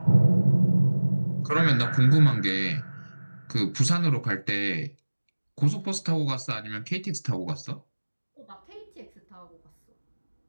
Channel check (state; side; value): inverted; both; correlation -1.00